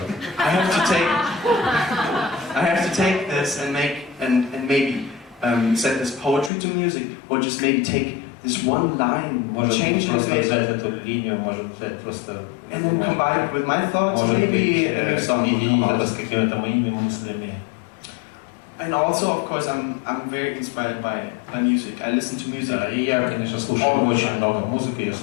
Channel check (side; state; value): right; drops out; at 6.5 s